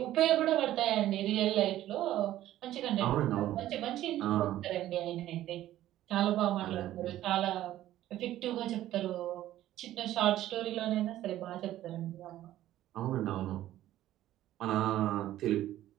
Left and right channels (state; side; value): quieter; left; 13.6 dB